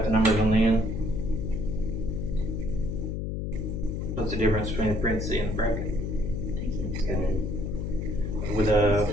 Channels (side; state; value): left; noise; hum, 3 dB below the sound